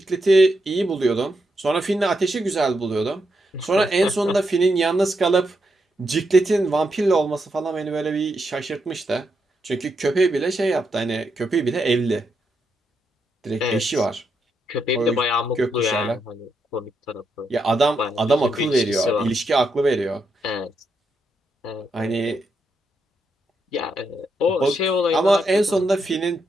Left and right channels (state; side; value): normal; both; correlation 0.82